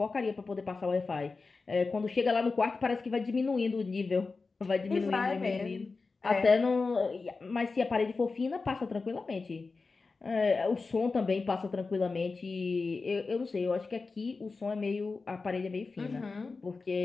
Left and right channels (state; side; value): quieter; right; 4.1 dB